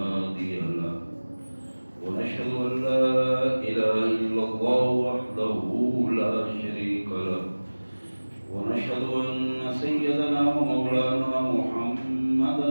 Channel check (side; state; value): both; inverted; correlation -1.00